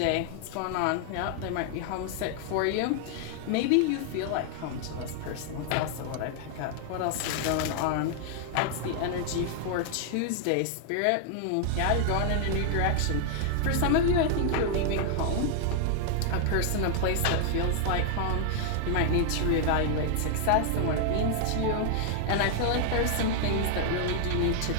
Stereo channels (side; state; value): both; different; correlation 0.00